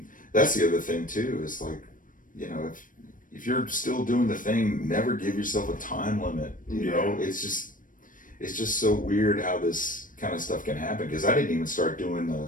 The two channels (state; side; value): late; right; 0.39 ms